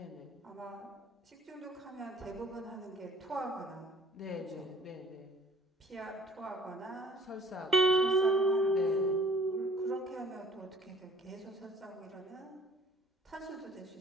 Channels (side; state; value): both; normal; correlation 0.53